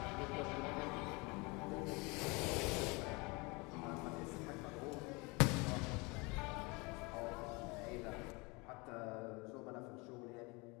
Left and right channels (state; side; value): quieter; right; 27.0 dB